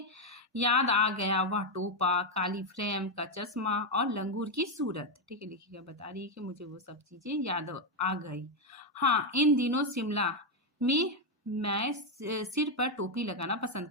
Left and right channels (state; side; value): normal; both; correlation 0.04